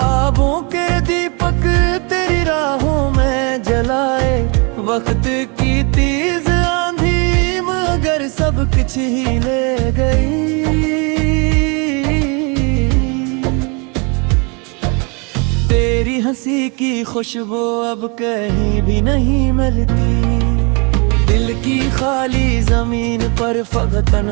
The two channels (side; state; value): left; quieter; 32.3 dB